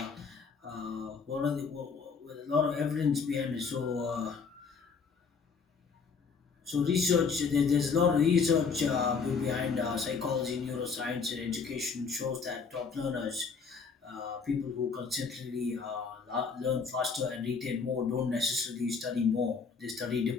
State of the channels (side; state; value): right; quieter; 5.4 dB